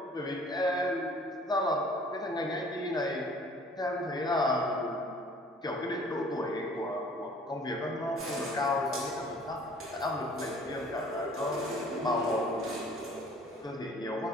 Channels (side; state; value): both; normal; correlation 0.53